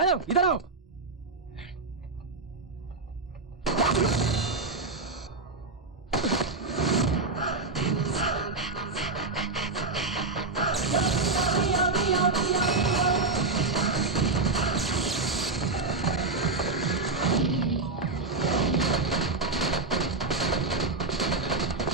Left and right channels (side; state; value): left; quieter; 3.8 dB